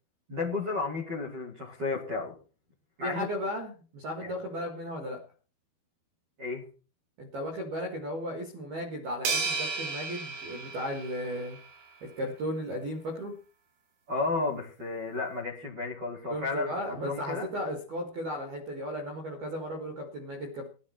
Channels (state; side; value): late; left; 12 ms